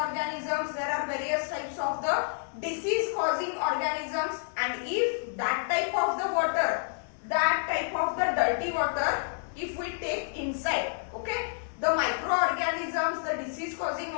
there are various types of the disease causing organisms, and if that type of the water, that type of the dirty water, if we take inside, okay, the microorganisms, the disease causing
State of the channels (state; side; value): silent; right; digital silence